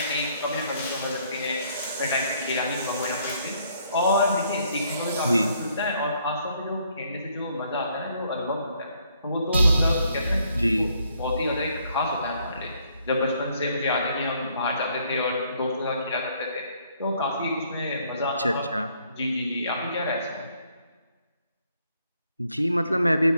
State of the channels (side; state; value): both; inverted; correlation -0.68